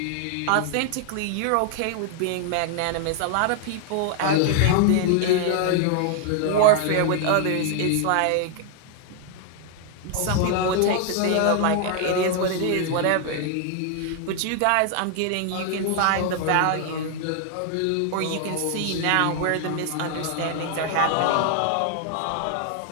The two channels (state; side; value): different; both; correlation 0.00